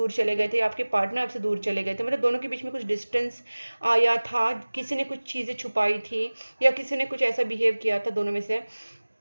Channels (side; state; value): both; inverted; correlation -1.00